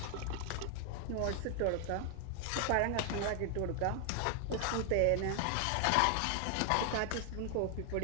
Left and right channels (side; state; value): both; different; correlation 0.00